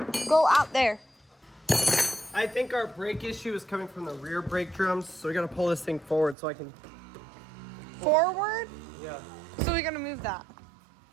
go out there. I think our brake issue is coming from the rear brake drums, so we got to pull this thing forward so I can. Forward? Yeah. So we gotta move that.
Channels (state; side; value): drops out; left; at 6.4 s